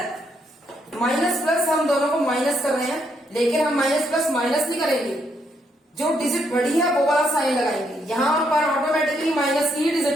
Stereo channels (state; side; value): normal; both; correlation 0.75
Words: माइनस प्लस हम दोनों को माइनस कर रहे हैं, लेकिन हम माइनस प्लस माइनस नहीं करेंगे, जो डिजिट बड़ी है वो वाला साइन लगाएंगे। यहाँ पर ऑटोमेटिकली माइनस की ही